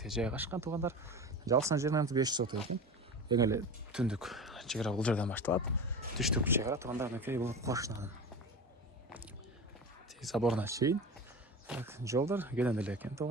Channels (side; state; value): both; normal; correlation 0.30